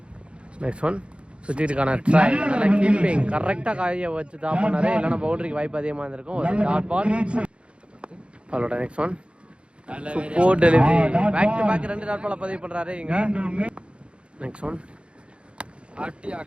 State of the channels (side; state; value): left; late; 0.058 ms